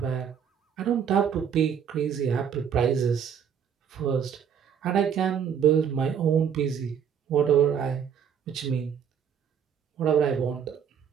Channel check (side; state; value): left; quieter; 7.9 dB